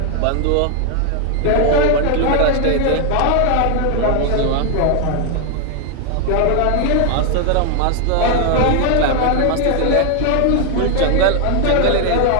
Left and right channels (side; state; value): both; different; correlation 0.00